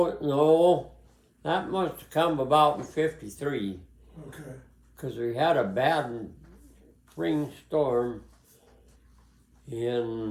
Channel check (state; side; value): identical; both; correlation 1.00